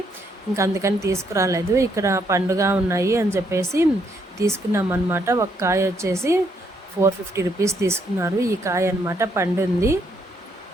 ఇంక అందుకని తీసుకురాలేదు. ఇక్కడ పండుగ ఉన్నాయి అని చెప్పేసి తీసుకున్నాం అనమాట. ఒక కాయ వచ్చేసి 450 రూపీస్ తీసుకున్నారు. ఈ కాయ అనమాట పండుంది.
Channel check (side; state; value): both; normal; correlation 0.73